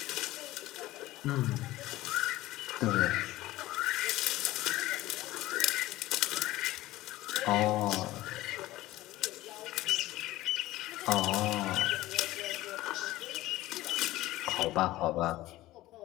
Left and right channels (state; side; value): quieter; right; 17.0 dB